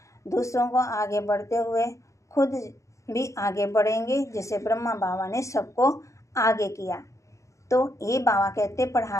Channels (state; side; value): late; right; 0.15 ms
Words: दूसरों को आगे बढ़ते हुए खुद भी आगे बढ़ेंगे, जैसे ब्रह्मा बाबा ने सबको आगे किया। तो ये बाबा कहते